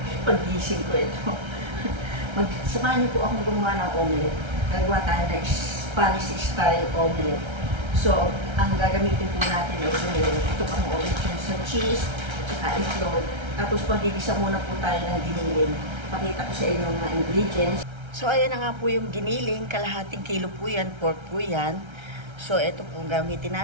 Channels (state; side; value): late; left; 1.3 ms